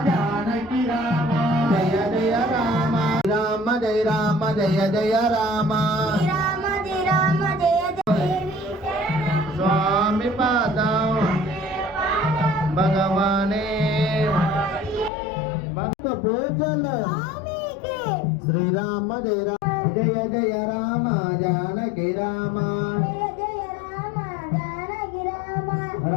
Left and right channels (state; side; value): drops out; right; at 15.1 s